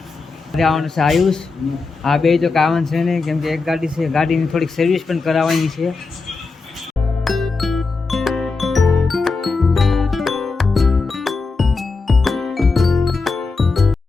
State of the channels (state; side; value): quieter; right; 4.1 dB